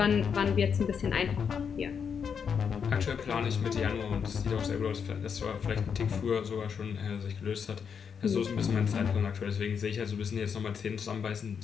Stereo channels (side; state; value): right; quieter; 6.8 dB